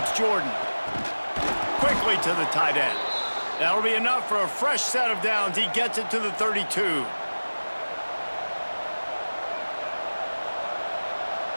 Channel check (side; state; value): both; inverted; correlation -1.00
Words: Jordan. Quickly to the tight end. That'll be enough for a fresh set of downs. He gets it to the 32.